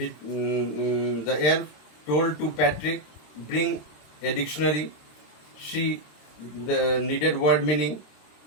elf told to Patrick, bring a dictionary, see the needed word meaning,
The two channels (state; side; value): late; right; 26 ms